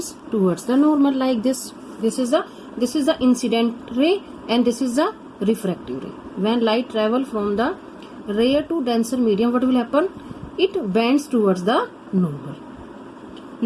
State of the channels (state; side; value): identical; both; correlation 1.00